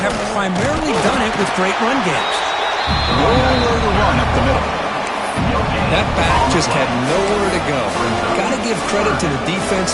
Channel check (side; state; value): both; identical; correlation 1.00